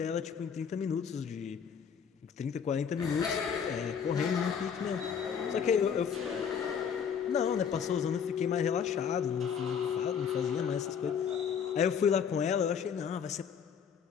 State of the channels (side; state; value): right; quieter; 7.3 dB